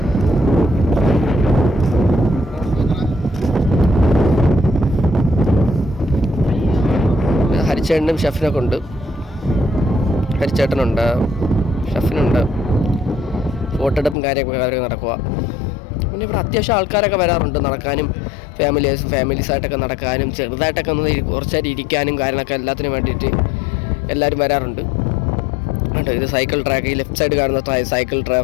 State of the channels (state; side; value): drops out; right; at 14.2 s